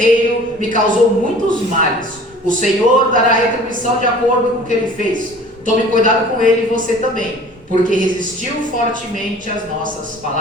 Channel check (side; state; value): both; normal; correlation 0.47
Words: me causou muitos males. O Senhor dará retribuição de acordo com o que ele fez. Tome cuidado com ele e você também, porque resistiu fortemente às nossas